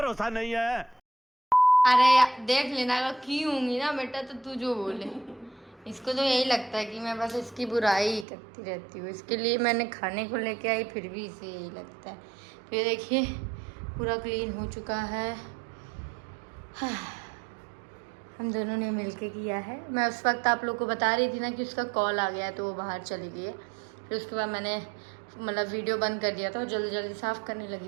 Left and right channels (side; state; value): left; drops out; at 8.2 s